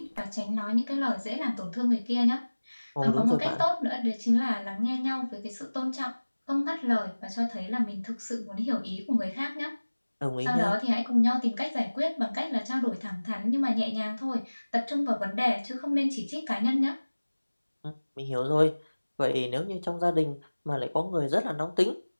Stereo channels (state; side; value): inverted; both; correlation -1.00